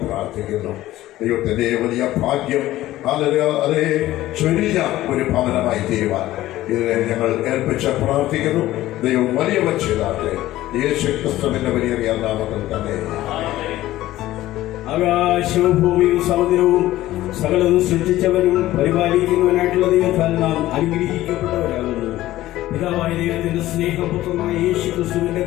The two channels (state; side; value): quieter; right; 15.4 dB